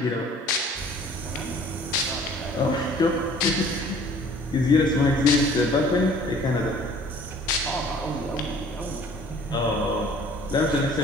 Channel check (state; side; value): normal; both; correlation 0.53